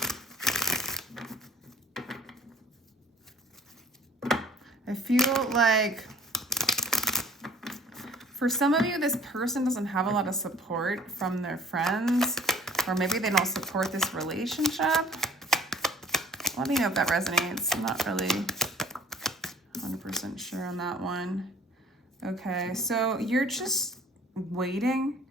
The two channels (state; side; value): normal; both; correlation 0.54